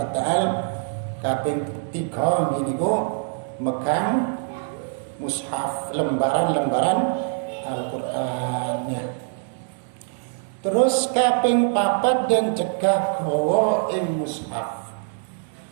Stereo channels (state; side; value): silent; left; 63 dB below the other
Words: kaping 3 niku megang mushaf lembaran Al-Qur'annya. Terus kaping 4 dan cegah gawa ing mushaf.